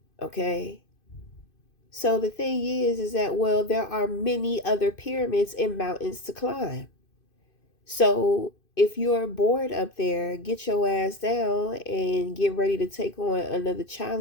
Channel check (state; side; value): late; right; 2.5 ms